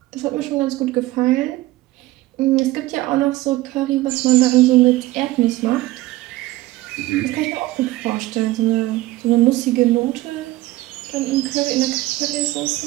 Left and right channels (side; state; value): left; quieter; 17.7 dB